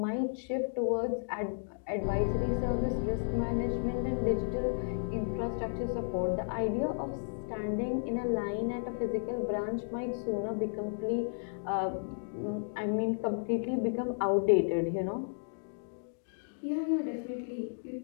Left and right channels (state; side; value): silent; right; digital silence